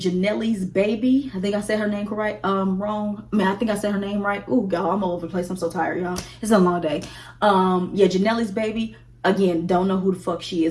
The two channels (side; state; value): both; identical; correlation 1.00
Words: Baby. I think I said her name correct. Wrong. I mean, I think I said her name right. Ooh, y'all, I'm all over the place. I'm so tired, y'all. It's a long day. Yeah, Janelle's Baby. Again, don't know who the fuck she